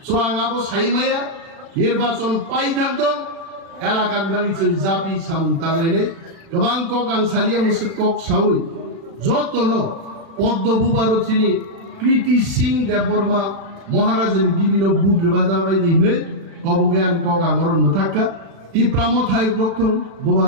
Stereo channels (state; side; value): late; left; 36 ms